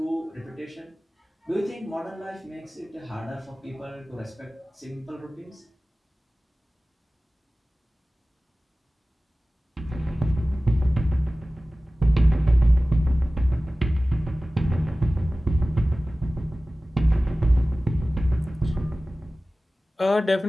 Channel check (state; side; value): normal; both; correlation 0.97